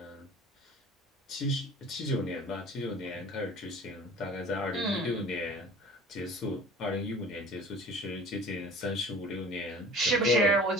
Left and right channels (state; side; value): normal; both; correlation 0.43